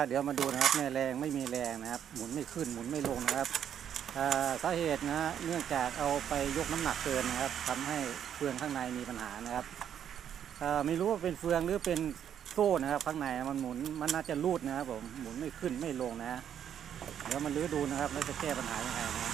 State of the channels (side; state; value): left; quieter; 9.2 dB